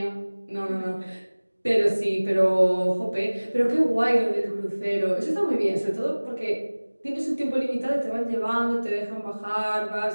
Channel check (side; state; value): both; inverted; correlation -1.00